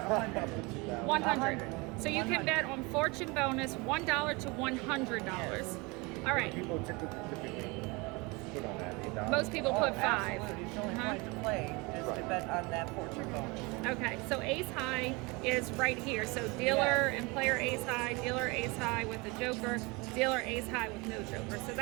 100. 100. So you can 100. bet on fortune bonus $1 to $100. Yes. All right. People typically put on that $8. Most people Oh, put 5. absolutely. It's the only Uh-huh. point to play is to bet on that fortune bonus. Okay, so ace high is right here. So dealer and player ace high, dealer ace high with the joker, dealer ace high with no joker. So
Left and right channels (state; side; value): quieter; left; 26.5 dB